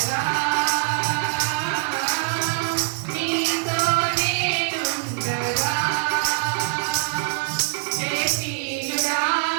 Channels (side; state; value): left; silent; digital silence